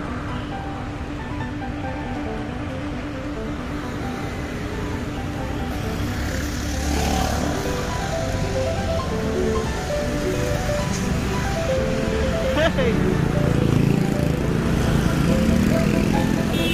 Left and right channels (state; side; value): identical; both; correlation 1.00